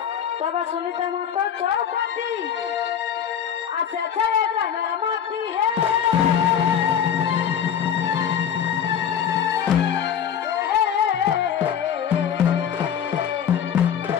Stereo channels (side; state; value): right; quieter; 8.6 dB